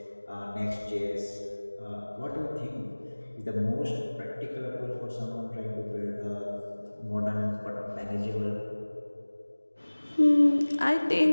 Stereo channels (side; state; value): both; inverted; correlation -1.00